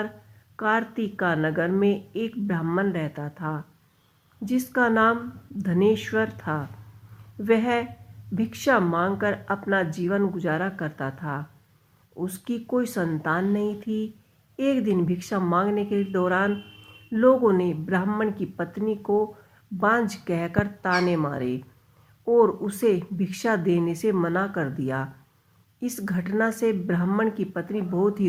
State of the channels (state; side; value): identical; both; correlation 1.00